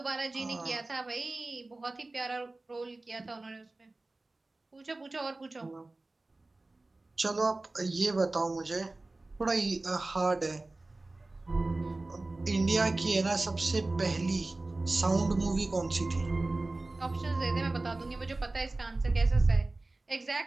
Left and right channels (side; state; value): left; quieter; 3.1 dB